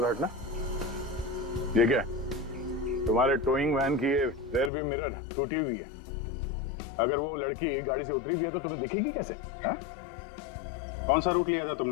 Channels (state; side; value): drops out; right; at 4.7 s